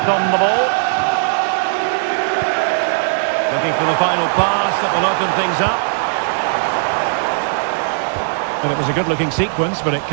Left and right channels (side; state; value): left; silent; 55 dB below the other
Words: on the ball. Looking for the final pass that will open things up. And it was a good-looking sequence, but it